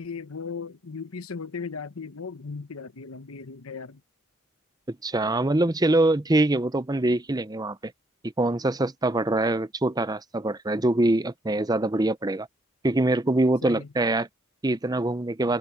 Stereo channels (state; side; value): normal; both; correlation 0.71